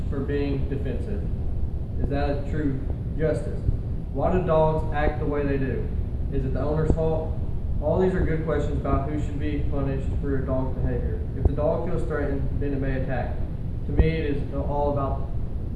for being defensive? Is that a true justice? Why do dogs act the way they do? Is it the owner's fault? All these are good questions about who should be punished for a dog's behavior. If the dog feels threatened, then it may attack. To me, it is all about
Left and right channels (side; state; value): both; identical; correlation 1.00